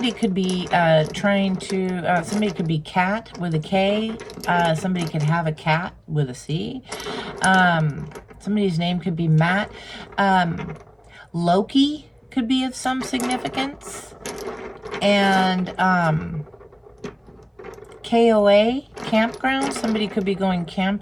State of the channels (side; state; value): both; identical; correlation 1.00